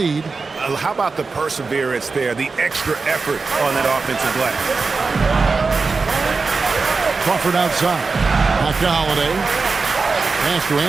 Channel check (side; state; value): left; quieter; 4.3 dB